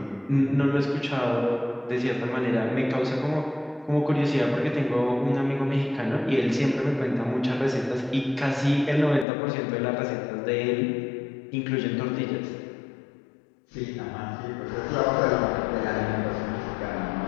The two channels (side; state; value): right; drops out; at 9.2 s